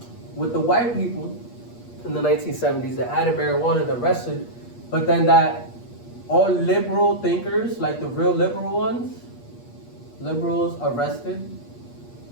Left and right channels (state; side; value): late; right; 8.4 ms